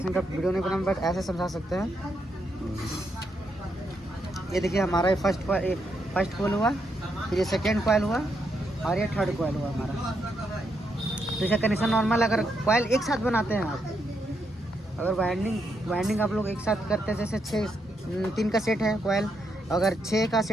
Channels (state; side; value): normal; both; correlation 0.79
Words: का वीडियो नहीं बना, बट ऐसे समझा सकते हैं। ये देखिए हमारा ये फर्स्ट कॉइल हुआ, फिर ये सेकेंड कॉइल हुआ और ये थर्ड कॉइल हुआ हमारा। तो इसका कनेक्शन नॉर्मल, अगर कॉइल एक साथ बनाते हैं आप, अगर वाइंडिंग आप लोग एक साथ करते हैं, जैसे 3 का सेट है कॉइल, अगर 6 का